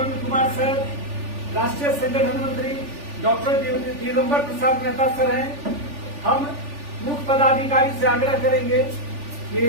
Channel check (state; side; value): late; left; 3.4 ms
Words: कुमार सर, राष्ट्रीय संगठन मंत्री डॉक्टर दिगंबर प्रसाद मेहता सर हैं। हम मुख्य पदाधिकारी से आग्रह करेंगे कि